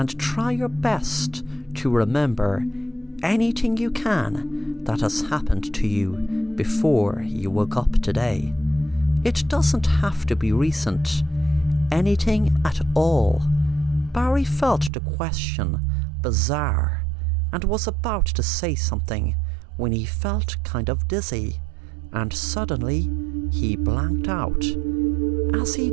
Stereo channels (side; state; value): left; drops out; at 14.9 s